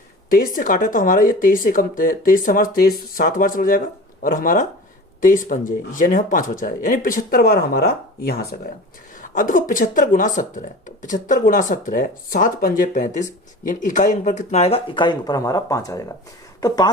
23 से काटे तो हमारा ये 23 से कम, 23 से हमारा 23 7 बार चला जाएगा और हमारा 23 पंजे यानी हम 5 बचा है, यानी 75 बार हमारा यहां से गया। अब देखो 75 गुना 17 है, तो 75 गुना 17 7 पंजे 35, यानी इकाई अंक पर कितना आएगा, इकाई अंक पर हमारा 5 आएगा। तो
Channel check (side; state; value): both; normal; correlation 0.37